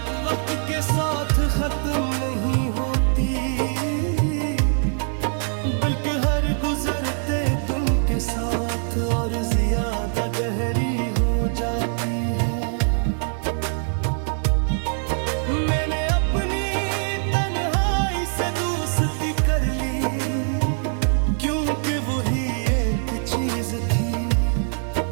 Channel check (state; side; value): silent; left; 63 dB below the other